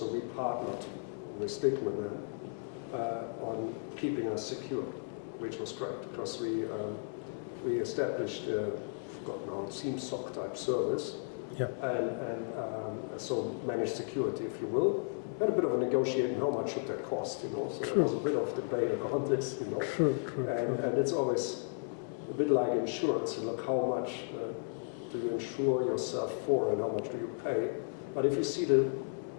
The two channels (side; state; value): right; silent; digital silence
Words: we partnered with Stickman then on keeping us secure, which was great, because we established, forgotten how it seems, SOC type service, and so managed security, if you will. We had a bit of a negotiating, how much should that cost, so there was a bit of debate around this, and it's always a bit like insurance. Look, how much do you insure yourself for, and how much do you pay? But if you see the